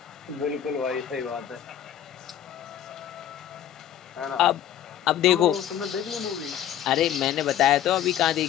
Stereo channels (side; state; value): right; quieter; 10.7 dB